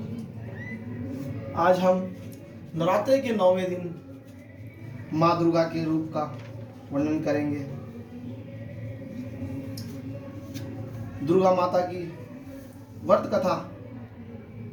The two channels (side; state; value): both; identical; correlation 1.00